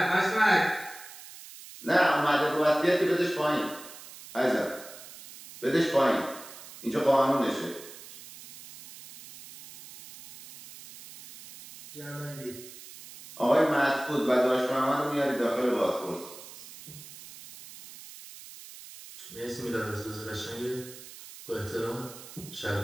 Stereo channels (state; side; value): noise; right; hiss, 16 dB below the sound